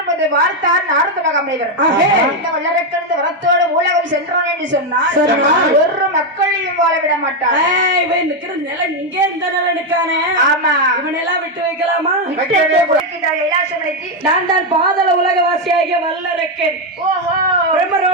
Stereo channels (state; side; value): normal; both; correlation 0.05